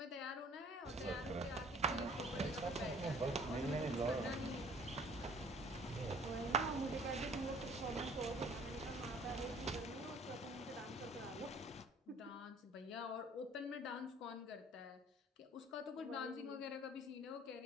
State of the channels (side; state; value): both; normal; correlation 0.53